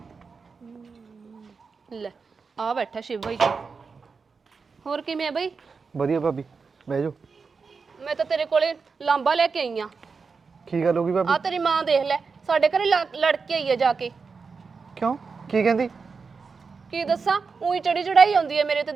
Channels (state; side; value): quieter; left; 5.0 dB